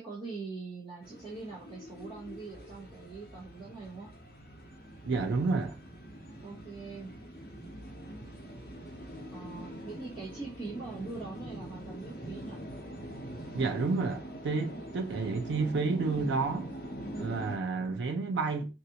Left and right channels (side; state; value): left; quieter; 3.2 dB